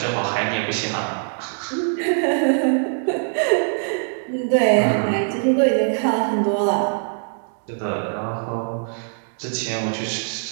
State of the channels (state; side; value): silent; left; digital silence